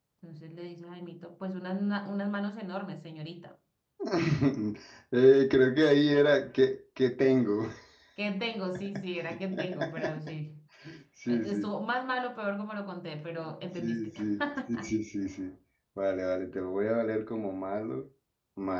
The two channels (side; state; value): both; identical; correlation 1.00